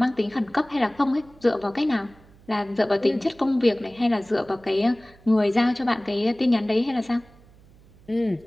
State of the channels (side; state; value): right; noise; hum, 26 dB below the sound